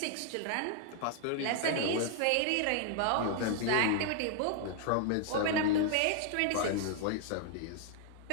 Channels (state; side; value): different; both; correlation 0.00